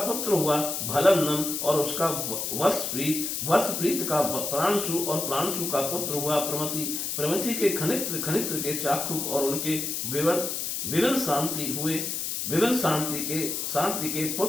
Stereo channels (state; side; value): noise; left; hiss, 2 dB below the sound